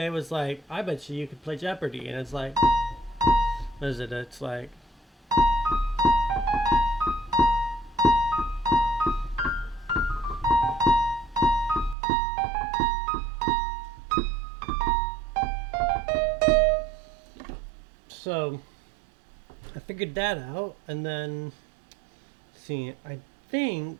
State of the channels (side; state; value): left; drops out; at 12.0 s